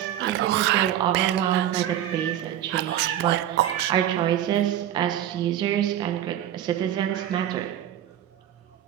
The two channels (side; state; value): left; quieter; 11.5 dB